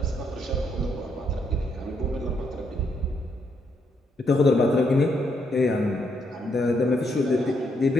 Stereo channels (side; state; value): both; normal; correlation 0.76